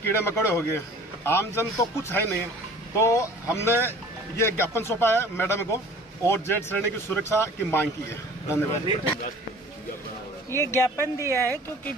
मकोड़े हो गए, आमजन तो कुछ है नहीं। तो हमने ये ज्ञापन सौंपा है मैडम को और जेड श्रेणी की सुरक्षा की मांग की है। धन्यवाद। ये ज्ञापन दिया है क्योंकि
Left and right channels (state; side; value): normal; both; correlation 0.47